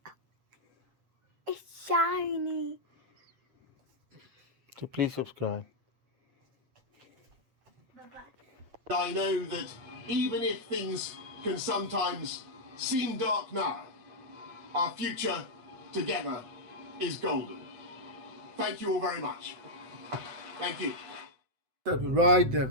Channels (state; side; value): late; left; 7.8 ms